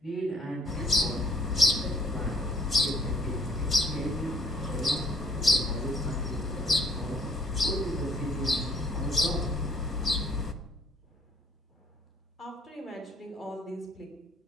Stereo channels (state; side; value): normal; both; correlation 0.60